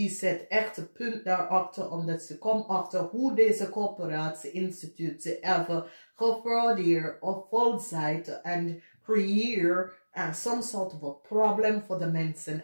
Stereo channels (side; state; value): both; inverted; correlation -1.00